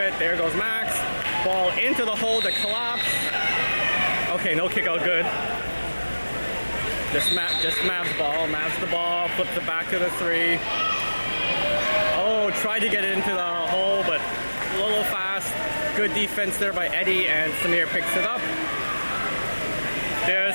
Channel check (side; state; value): both; inverted; correlation -1.00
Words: There goes Max. Ball into the hole to collapse. Okay, no kick out, good. Just Mav's ball. Mav's the ball. Flips it back to the 3. Oh, tried to get it into the hole, but a little fast. Good defense there by Eddie, and Samir picks it up.